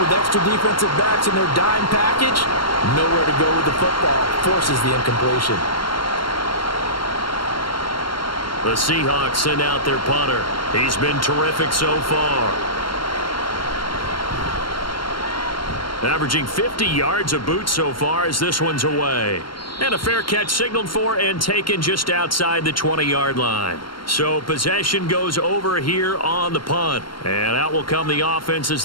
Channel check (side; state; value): right; late; 0.72 ms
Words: extra defensive backs in their dime package. Nowhere to go with the football. Forces the incompletion. The Seahawks send out their punter. He's been terrific so far. Averaging 50 yards a boot so far as this one's away. And a fair catch signaled for and taken just outside the 20-yard line. So possession goes over here on the punt. And out will come the offense as